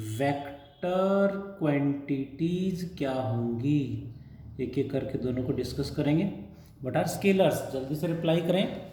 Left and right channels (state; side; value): identical; both; correlation 1.00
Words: Vector quantities क्या होंगी, एक एक करके दोनों को डिस्कस करेंगे. What are स्केलर्स, जल्दी से रिप्लाई करें,